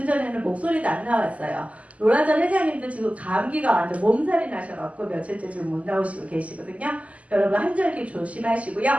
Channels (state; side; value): late; left; 0.068 ms